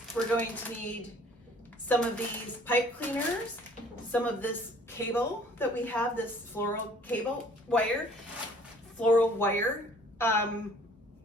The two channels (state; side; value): normal; both; correlation 0.55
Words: We're going to need some of these pipe cleaners, some of this cable that we have, this floral wire.